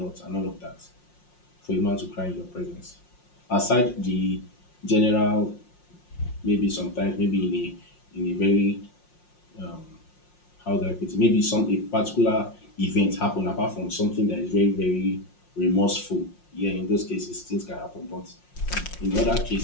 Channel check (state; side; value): late; right; 5.6 ms